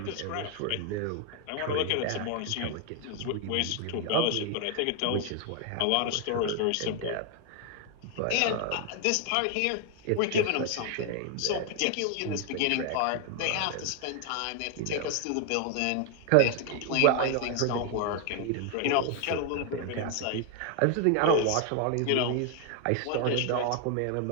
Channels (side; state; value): both; different; correlation 0.00